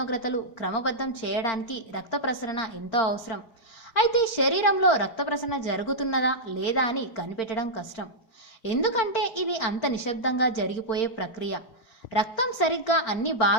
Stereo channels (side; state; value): right; late; 4.4 ms